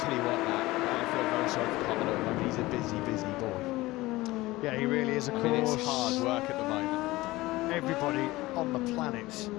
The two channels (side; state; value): right; quieter; 19.2 dB